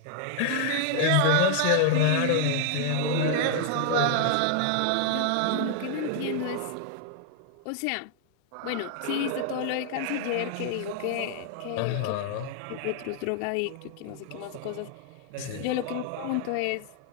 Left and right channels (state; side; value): different; both; correlation 0.00